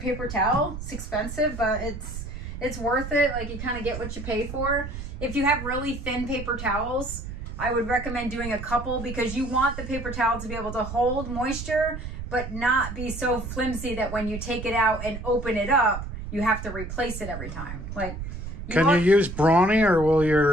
paper towel. It's expensive, but it's worth it. Like, you kind of get what you pay for. If you have really thin paper towels, I would recommend doing a couple, because you want the paper towel to be able to hold moisture, but not be so flimsy that when you take it out and open it up, you have to replace it every time. Like, Can you use Brawny, or will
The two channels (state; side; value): noise; right; rumble, 8 dB below the sound